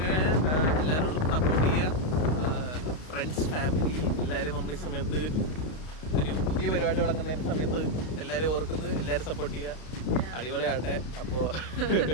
എല്ലാവരോടും സപ്പോർട്ട് ചെയ്യുക. ഫ്രണ്ട്സ്, ഫാമിലി എല്ലാവരും നമ്മൾ ഈ സമയത്ത് ഒരു പുതിയ പരിപാടി തുടങ്ങുന്നതിന്റെ സമയത്ത് എല്ലാവരും ഓർക്കുന്നത്, എല്ലാവരും സപ്പോർട്ട് ചെയ്യുക. അടിപൊളിയാട്ടെ. അപ്പോൾ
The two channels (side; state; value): right; late; 32 ms